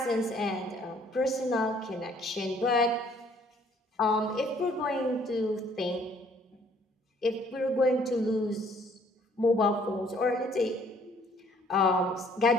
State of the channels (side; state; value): both; normal; correlation 0.61